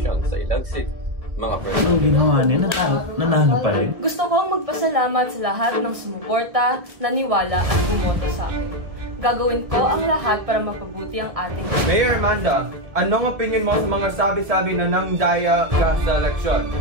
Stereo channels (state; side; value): late; left; 1.7 ms